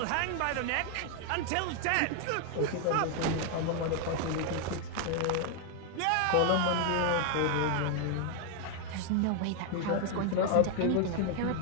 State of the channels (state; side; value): different; both; correlation 0.01